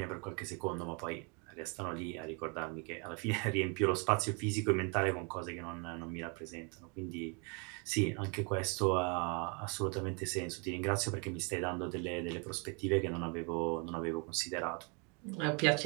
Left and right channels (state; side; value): quieter; left; 34.5 dB